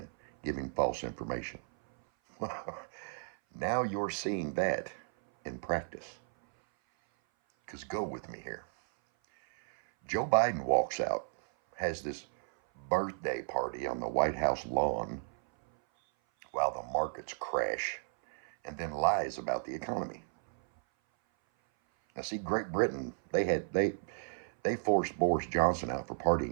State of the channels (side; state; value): left; silent; 55 dB below the other